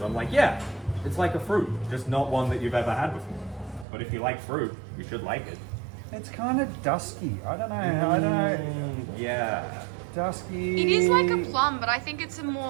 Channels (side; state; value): left; drops out; at 3.9 s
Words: I'm like, yeah, it's like a fruit, just not one that you've ever had before. But if you like fruit, you should like it. It's kind of dusky. I don't know. Yeah. Dusky. It is like a plum, but I think it's a